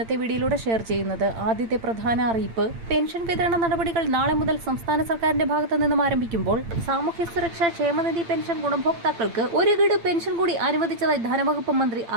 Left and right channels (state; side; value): late; left; 8.8 ms